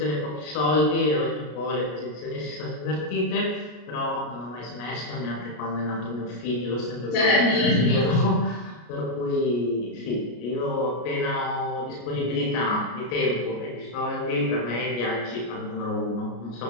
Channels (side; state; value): right; late; 33 ms